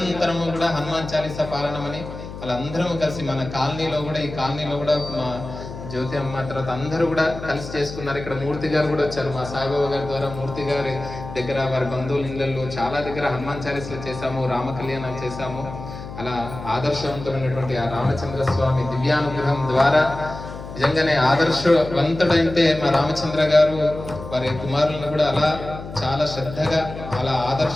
కూడా హనుమాన్ చాలీసా పాలనమని వాళ్ళందరం కలిసి మన కాలనీలో కూడా, ఈ కాలనీలో కూడా మా జ్యోతి అమ్మ తర్వాత అందరూ కూడా కలిసి చేసుకున్నారు. ఇక్కడ మూర్తి గారు కూడా వచ్చారు. మా సాయిబాబా గారి ద్వారా మూర్తి గారి దగ్గర, వారి బంధువుల ఇళ్ళల్లో చాలా దగ్గర హనుమాన్ చాలీసాలు చేశాము, రామ కళ్యాణాలు చేశాము. అలా ఆదర్శవంతమైనటువంటి ఆ రామచంద్ర స్వామి దివ్యానుగ్రహం ద్వారా నిజంగానే ఆదర్శవంతుడైతే మా రామచంద్ర గారు వారి కుమారులను కూడా అలా చాలా శ్రద్ధగా, అలా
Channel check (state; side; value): noise; left; hum, 11 dB below the sound